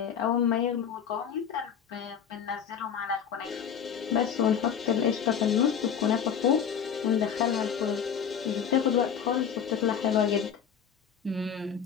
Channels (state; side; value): quieter; right; 7.9 dB